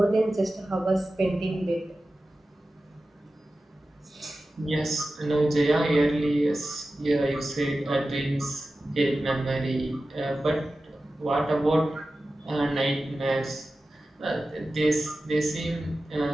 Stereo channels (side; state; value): both; normal; correlation 0.94